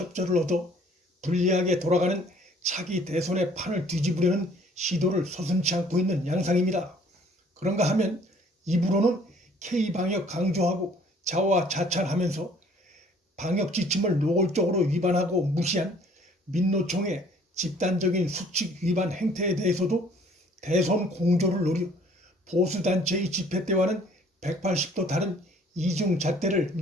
얻어 불리하게 돌아가는 차기 대선의 판을 뒤집으려는 시도를 서슴지 않고 있는 양상입니다. 그런가 하면 입으로는 K방역 강조하고 자화자찬하면서 방역 지침을 노골적으로 위반하고 무시한 민노총의 집단적인 수칙 위반 행태에 대해서도 대선 공조를 노려 보수단체의 집회 때와는 180도 다른 이중잣대를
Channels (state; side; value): normal; both; correlation 0.56